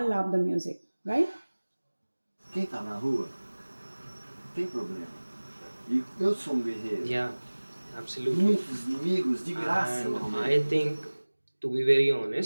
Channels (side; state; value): both; inverted; correlation -1.00